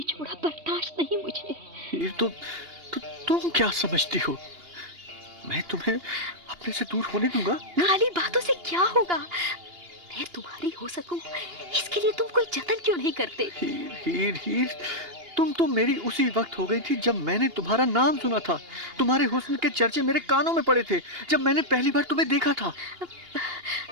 बर्दाश्त नहीं मुझे। हीर, तो तुम क्या समझती हो? मैं तुम्हें अपने से दूर होने दूंगा? खाली बातों से क्या होगा? मैं तुम्हारी हो सकूं, इसके लिए तुम कोई जतन क्यों नहीं करते? हीर, तुम तो मेरी उसी वक्त हो गई थी जब मैंने तुम्हारा नाम सुना था। तुम्हारे हुस्न के चर्चे मेरे कानों में पड़े थे जब मैंने पहली बार तुम्हें देखा था।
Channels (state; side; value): late; left; 2.8 ms